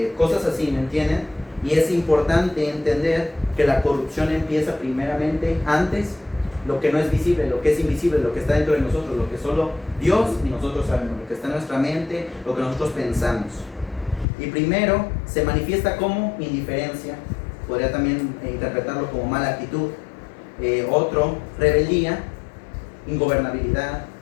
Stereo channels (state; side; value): drops out; right; at 14.2 s